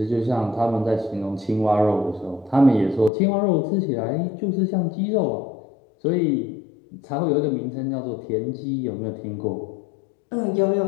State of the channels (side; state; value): right; drops out; at 3.1 s